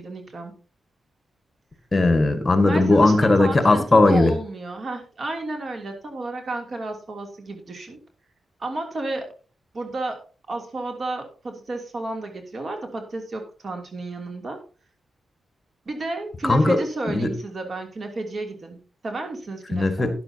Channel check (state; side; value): normal; both; correlation 0.93